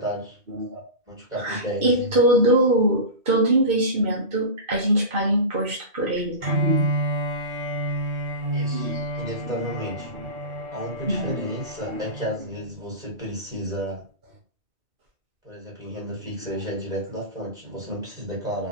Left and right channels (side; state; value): left; late; 2.4 ms